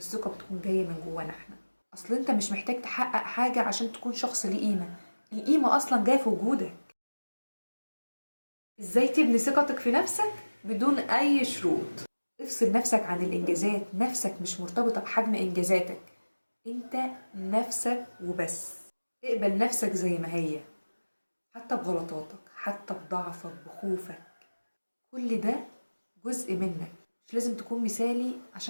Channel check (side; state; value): both; inverted; correlation -1.00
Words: بتكون جاية من جوانا احنا. اصل انت مش محتاج تحقق حاجة عشان تكون شخص ليه قيمة، القيمة اصلا جاية في وجودك. ازاي تبني ثقتك في نفسك بدون اي شروط؟ افصل نفسك عن الانجازات، نفسك مش مرتبطة بحجم انجازاتك، انت نفسك وبس. اقبل نفسك زي ما هي، حتى بغلطاتك، حتى بضعفك، بخوفك، كل ده جزء منك. مش لازم تكون مثالي